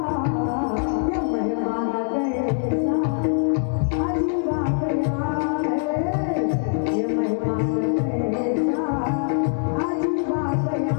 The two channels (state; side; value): silent; right; digital silence